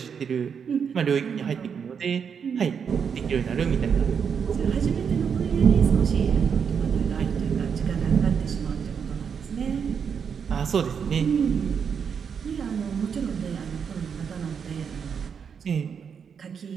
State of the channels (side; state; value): left; quieter; 6.9 dB